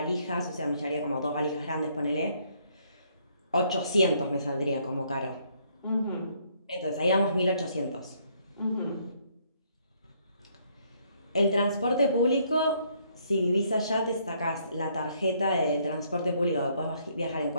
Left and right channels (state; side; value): inverted; both; correlation -0.68